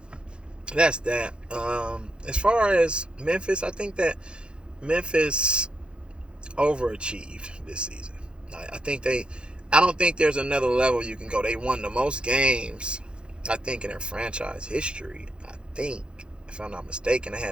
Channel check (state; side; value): late; left; 0.054 ms